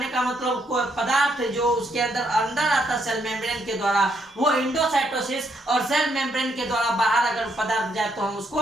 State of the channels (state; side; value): normal; both; correlation 0.74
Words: का मतलब कोई पदार्थ जो उसके अंदर आता सेल मेम्ब्रेन के द्वारा, वो इंडोसाइटोसिस, और सेल मेम्ब्रेन के द्वारा बाहर अगर पदार्थ जाए तो हम